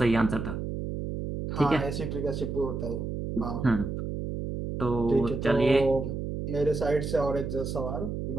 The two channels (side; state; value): right; noise; hum, 4 dB below the sound